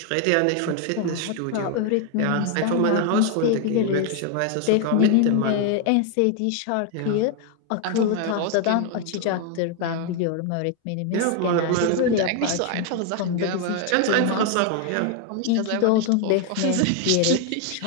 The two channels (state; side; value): different; both; correlation 0.01